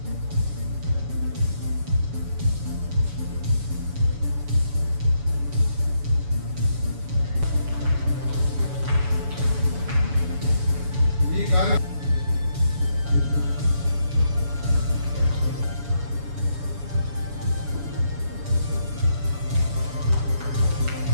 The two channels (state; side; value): late; left; 7.0 ms